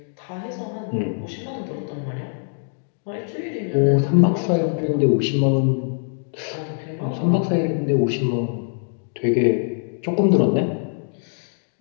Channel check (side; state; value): right; silent; digital silence